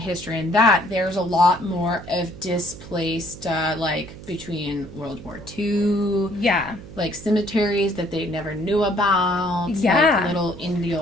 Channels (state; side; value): noise; right; hum, 15 dB below the sound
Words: in that, there's a lot more of displaced, like, between World War II. Yeah. Like, cemeteries that they never knew about. Yeah. Like, little